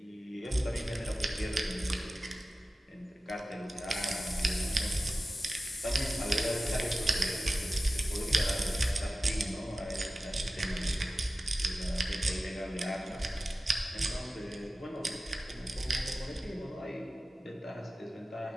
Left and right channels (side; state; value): both; normal; correlation 0.95